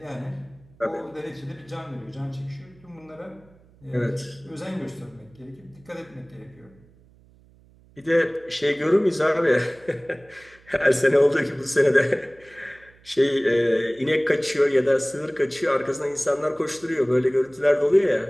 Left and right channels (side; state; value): right; noise; hum, 28 dB below the sound